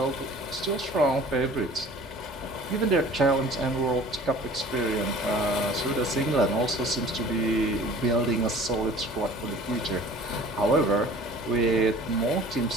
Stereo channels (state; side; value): normal; both; correlation 0.47